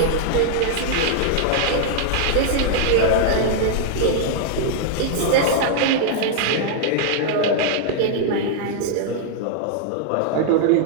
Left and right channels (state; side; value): different; both; correlation -0.01